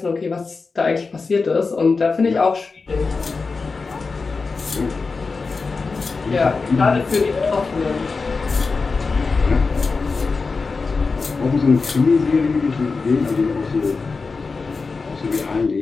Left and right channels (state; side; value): quieter; right; 4.3 dB